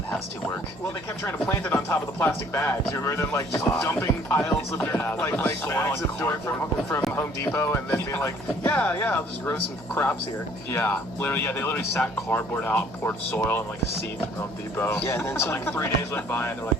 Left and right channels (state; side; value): normal; both; correlation 0.58